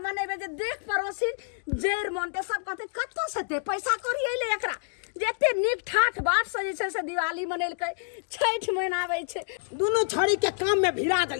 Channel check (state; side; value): silent; right; digital silence